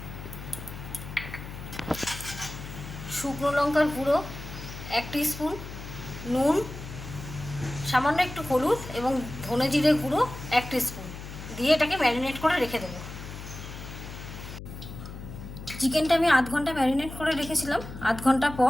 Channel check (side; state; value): left; noise; hum, 11 dB below the sound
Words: শুকনো লঙ্কার গুঁড়ো 1 টিস্পুন, নুন, সামান্য একটু হলুদ এবং ধনে জিরে গুঁড়ো 1 টিস্পুন দিয়ে এটাকে ম্যারিনেট করে রেখে দেবো। চিকেনটা আমি আধ ঘন্টা ম্যারিনেট করে রেখেছিলাম। আধ ঘন্টা